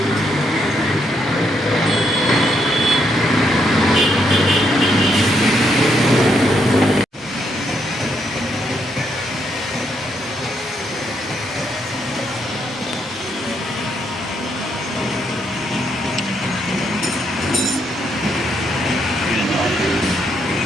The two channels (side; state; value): both; normal; correlation 0.76